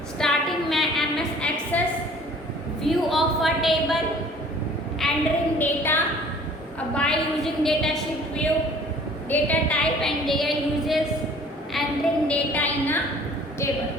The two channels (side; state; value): both; normal; correlation 0.51